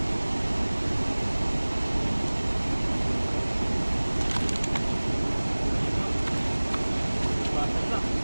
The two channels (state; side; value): inverted; both; correlation -1.00